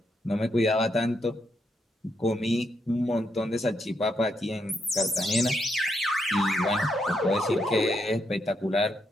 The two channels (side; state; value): both; normal; correlation 0.79